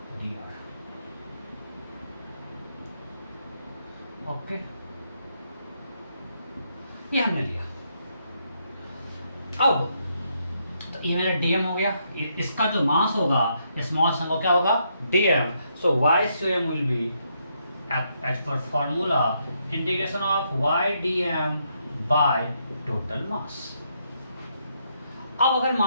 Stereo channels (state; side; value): inverted; both; correlation -0.77